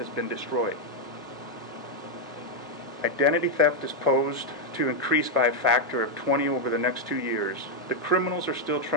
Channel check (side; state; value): both; normal; correlation 0.01